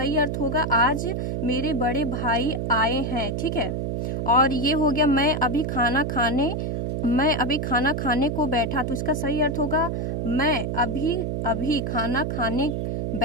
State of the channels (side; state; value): right; noise; hum, 2 dB below the sound